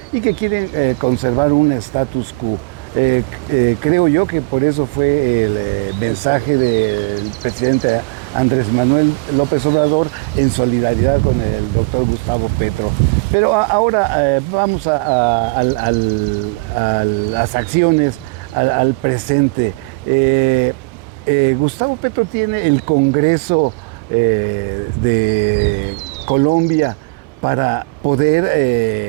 y que quieren conservar un status quo. Creo yo que por eso fue el mensaje del presidente Andrés Manuel López Obrador en solidaridad con el doctor Gustavo Petro. Pero ahora vamos a las acciones, al presente. Gustavo Petro tiene el Congreso de Colombia para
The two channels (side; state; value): left; quieter; 29.1 dB